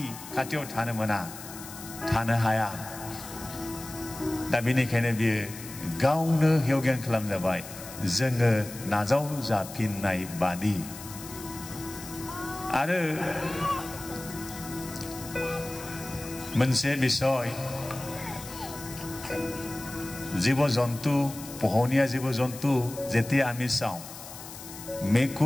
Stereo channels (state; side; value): noise; left; hiss, 13 dB below the sound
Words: खाथियाव थानो मोना थानो हाया दा बेनिखायनो बियो गावनो हेवज्ञान खालामजाबाय जोङो नाजाव जाफिननाय बादि आरो मोनसे बिषय জীৱ জন্তু পোহনীয়া জীৱ জন্তু যেতিয়া আমি চাওঁ